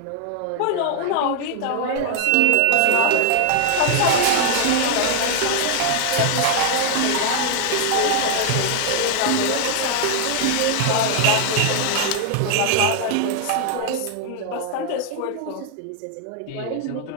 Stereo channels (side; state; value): both; different; correlation 0.00